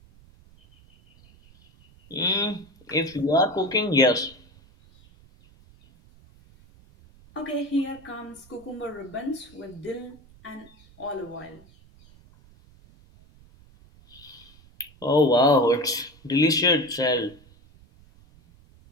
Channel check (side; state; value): right; noise; rumble, 26 dB below the sound